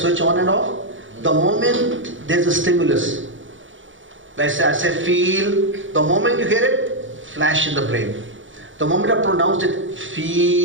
on and off, the moment there's a stimulus, I say feel, the moment you hear it, flash in the brain. The moment I pronounce it,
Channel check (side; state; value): left; late; 0.56 ms